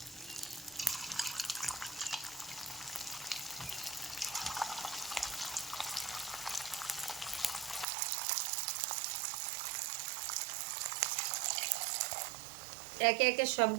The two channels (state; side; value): drops out; left; at 7.9 s